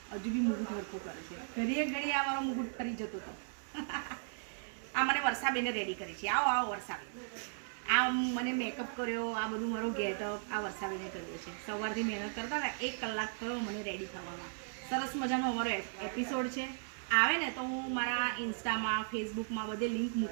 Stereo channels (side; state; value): left; silent; 53 dB below the other